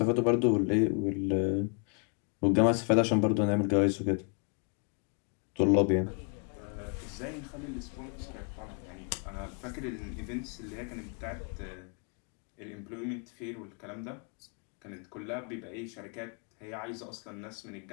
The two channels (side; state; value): right; quieter; 39.6 dB